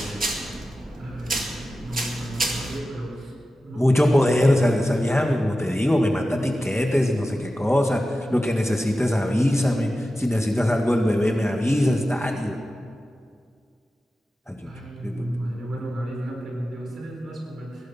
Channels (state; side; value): normal; both; correlation 0.94